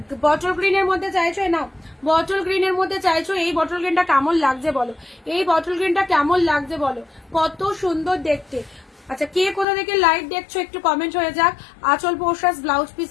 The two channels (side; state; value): right; drops out; at 9.7 s